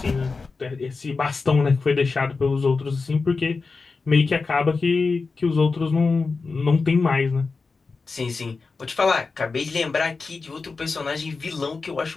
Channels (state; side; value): quieter; right; 4.3 dB